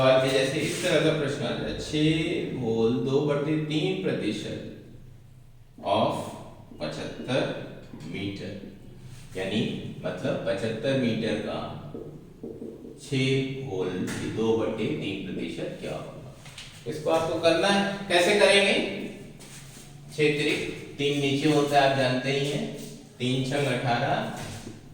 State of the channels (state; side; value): identical; both; correlation 1.00